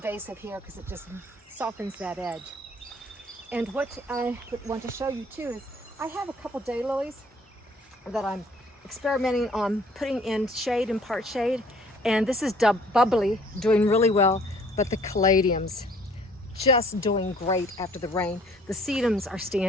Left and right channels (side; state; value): both; normal; correlation 0.57